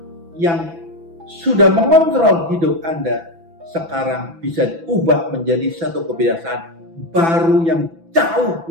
yang sudah mengontrol hidup Anda. Sekarang bisa diubah menjadi satu kebiasaan baru yang jauh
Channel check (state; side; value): late; left; 6.0 ms